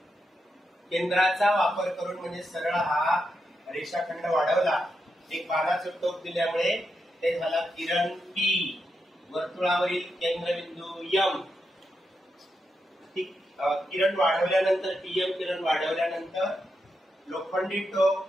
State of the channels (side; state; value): both; normal; correlation 0.85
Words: केंद्राचा वापर करून म्हणजे सरळ हा रेषाखंड वाढवला। एक बाणाचं टोक दिल्यामुळे ते झाला किरण P, वर्तुळावरील केंद्रबिंदू M। किरण वाढवल्यानंतर PM किरण वाढवल्यानंतर लोखंडी टोक